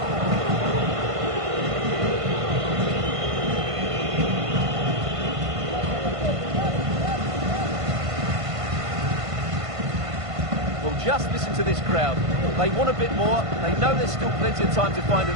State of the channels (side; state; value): left; late; 1.5 ms